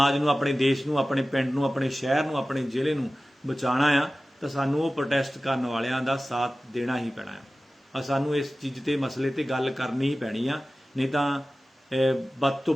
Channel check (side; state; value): both; normal; correlation 0.96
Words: ਨੂੰ, ਆਪਣੇ ਦੇਸ਼ ਨੂੰ, ਆਪਣੇ ਪਿੰਡ ਨੂੰ, ਆਪਣੇ ਸ਼ਹਿਰ ਨੂੰ, ਆਪਣੇ ਜ਼ਿਲ੍ਹੇ ਨੂੰ ਬਚਾਉਣਾ ਆ ਤਾਂ ਸਾਨੂੰ ਉਹ ਪ੍ਰੋਟੈਸਟ ਕਰਨ ਵਾਲਿਆਂ ਦਾ ਸਾਥ ਦੇਣਾ ਹੀ ਪੈਣਾ ਆ। ਸਾਨੂੰ ਇਸ ਚੀਜ਼ ਤੇ ਮਸਲੇ ਤੇ ਗੱਲ ਕਰਨੀ ਹੀ ਪੈਣੀ ਆ, ਨਹੀਂ ਤਾਂ ਬਦ ਤੋਂ